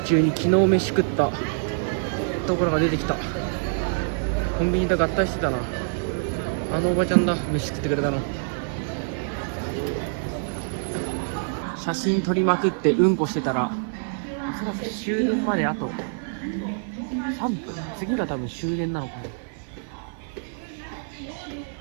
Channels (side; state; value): left; silent; digital silence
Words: 中に昨日飯食ったところが出てきた。コンビニと合体してたな。あのおばちゃんだ、飯食ってくれたの。写真撮りまくってうんこしてたら、おそらく終電まであと3分。次が多分終電なのかな。